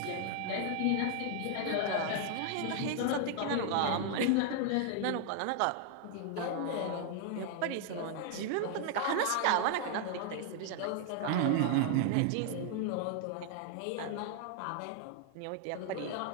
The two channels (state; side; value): different; both; correlation 0.00